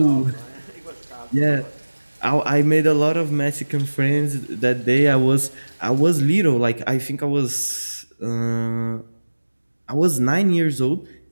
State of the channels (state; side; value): inverted; both; correlation -1.00